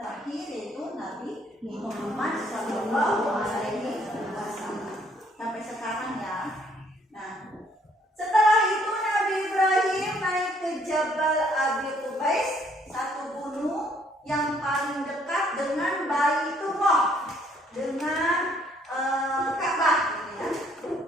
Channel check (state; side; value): normal; both; correlation 0.64